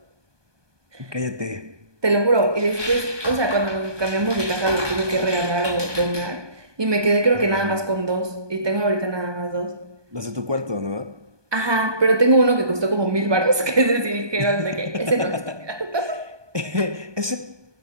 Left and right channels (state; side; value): late; left; 1.2 ms